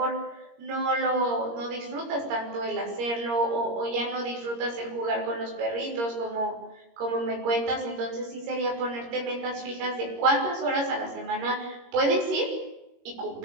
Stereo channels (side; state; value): left; late; 21 ms